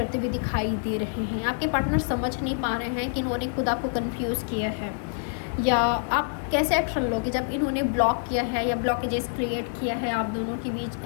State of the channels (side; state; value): right; silent; digital silence